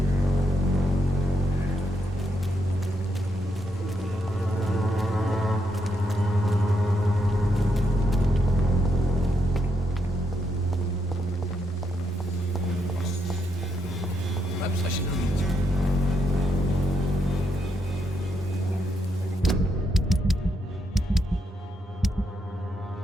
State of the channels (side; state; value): both; normal; correlation 0.80